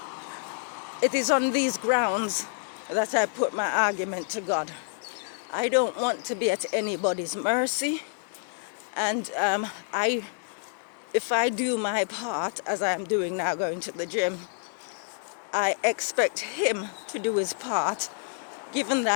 It is on these grounds that I put my argument to God. I don't want to be at anybody's mercy, and if I do my part, as I am doing now, going to the gym, I expect him to do his part, given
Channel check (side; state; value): right; silent; digital silence